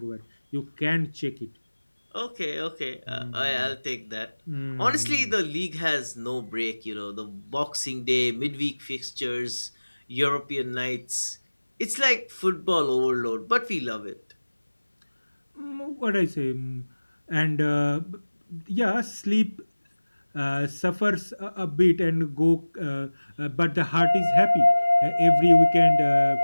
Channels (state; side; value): inverted; both; correlation -1.00